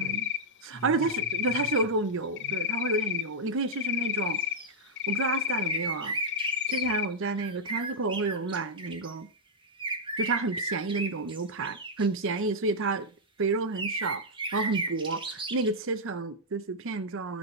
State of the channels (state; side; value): normal; both; correlation -0.06